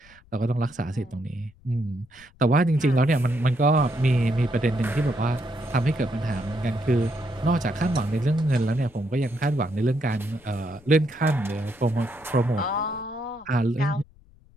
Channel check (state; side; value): noise; left; rumble, 27 dB below the sound